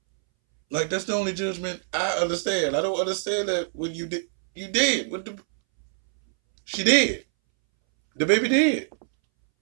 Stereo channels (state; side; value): silent; left; 62 dB below the other